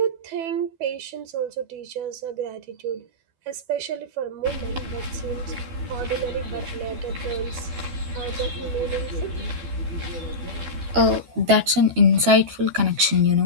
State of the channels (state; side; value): late; left; 12 ms